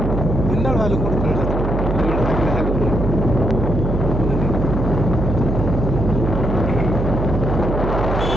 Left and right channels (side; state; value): right; noise; hum, 1 dB below the sound